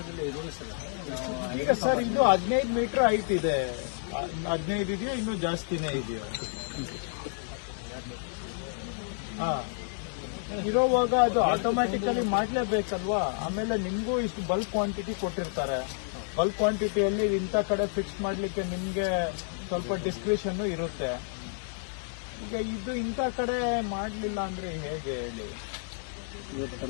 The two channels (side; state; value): right; silent; 58 dB below the other